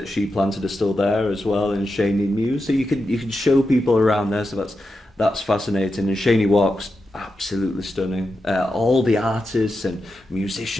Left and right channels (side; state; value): both; normal; correlation 0.88